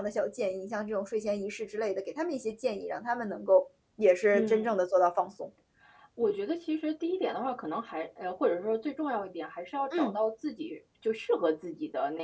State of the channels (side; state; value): both; identical; correlation 1.00